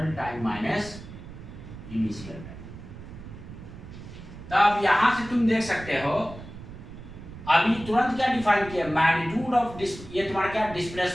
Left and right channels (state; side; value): noise; right; rumble, 14 dB below the sound